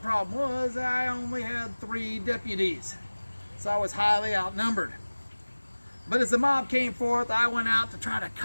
was I only had 3 deputies, so I was highly outnumbered. But as the mob came forth, I went out to try to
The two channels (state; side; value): inverted; both; correlation -1.00